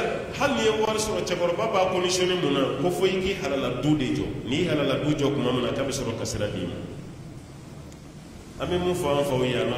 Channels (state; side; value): identical; both; correlation 1.00